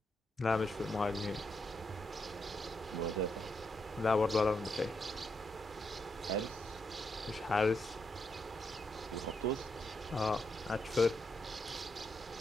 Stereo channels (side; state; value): both; normal; correlation 0.81